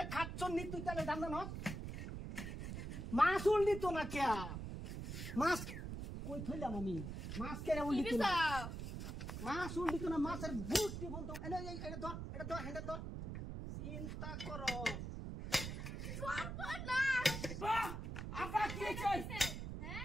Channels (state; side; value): noise; right; rumble, 6 dB below the sound